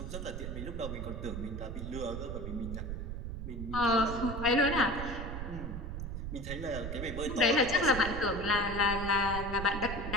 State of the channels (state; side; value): noise; right; rumble, 5 dB below the sound